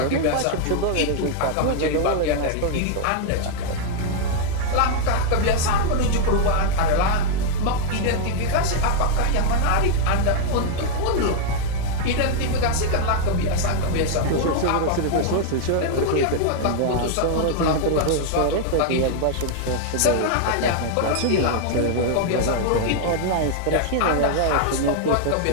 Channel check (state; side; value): different; both; correlation 0.00